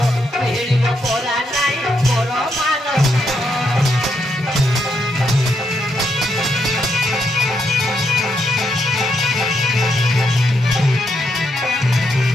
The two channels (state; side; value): normal; both; correlation 0.79